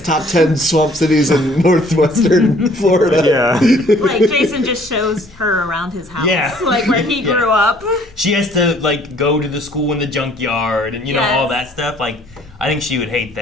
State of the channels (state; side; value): normal; both; correlation 0.58